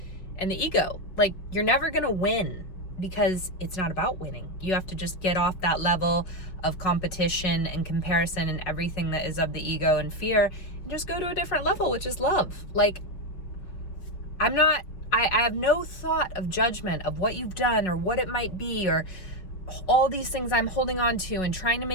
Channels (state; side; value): late; right; 5.7 ms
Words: and the ego. Like, you're never gonna win, because it's not about winning. You have to just get off that level of competition and comparison and everything that is of the ego and fear, and just go to a different level, which is love. Like, I have no thought of judgment of what you've done or what it might be, or all these things I'm holding on to and trying to